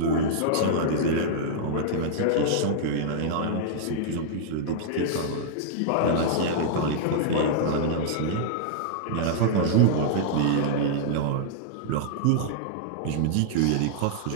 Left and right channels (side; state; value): both; different; correlation -0.02